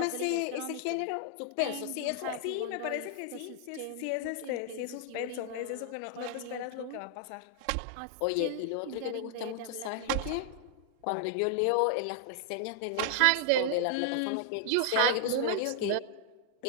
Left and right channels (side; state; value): both; different; correlation -0.01